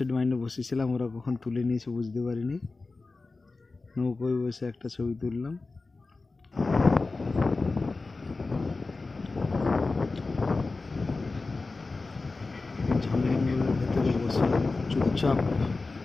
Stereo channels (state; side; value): quieter; right; 3.7 dB